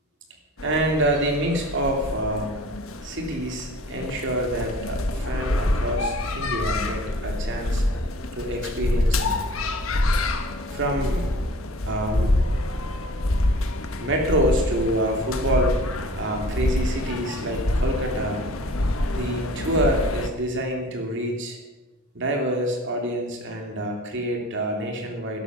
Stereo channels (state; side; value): normal; both; correlation 0.45